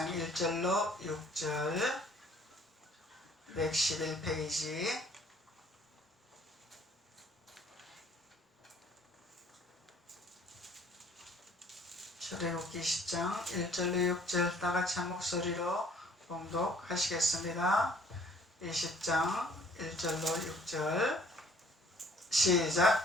1절로 6절 111페이지. 출애굽기 20장 1절로 6절 다같이 한 목소리로 봉독하시겠습니다. 20장 1절로 6절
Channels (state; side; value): normal; both; correlation 0.57